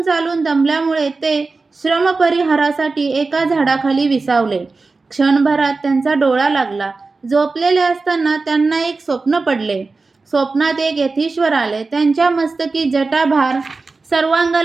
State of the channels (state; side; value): quieter; left; 3.9 dB